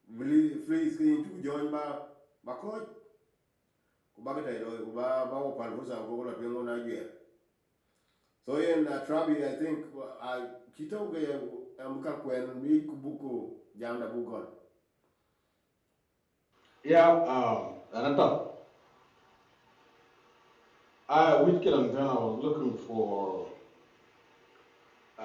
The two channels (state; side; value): identical; both; correlation 1.00